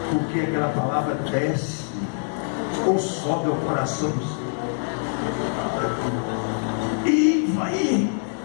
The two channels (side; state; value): right; silent; 62 dB below the other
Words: porque aquela palavra desce ou sobe ao coração do Senhor e vai